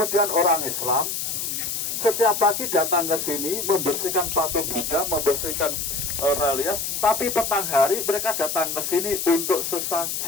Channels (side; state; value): left; noise; hiss, 3 dB below the sound